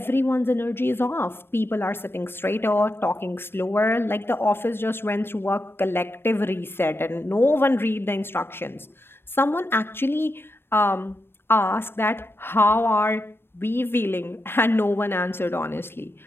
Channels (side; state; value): right; late; 0.11 ms